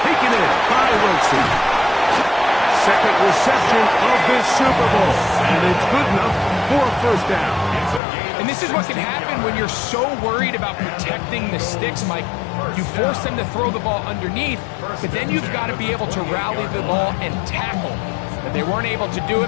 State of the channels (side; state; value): right; drops out; at 8.0 s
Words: taken in by Wilson. second reception of this Super Bowl, and it's good enough for a first down. And this is what can happen when you're so worried about protecting the sticks, Mike. You force them to throw the ball underneath, but then you've got to be able to rally the ball and tackle. But they weren't able to do